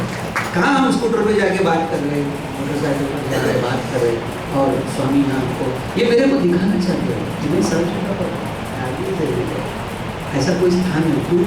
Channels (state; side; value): identical; both; correlation 1.00